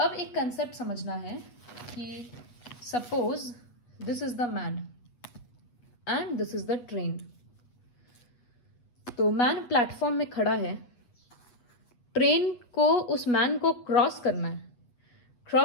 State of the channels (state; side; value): late; right; 8.3 ms